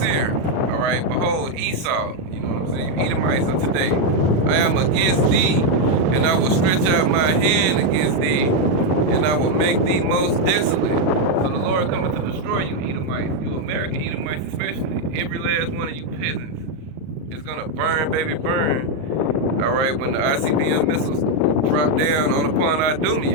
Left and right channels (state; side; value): late; left; 38 ms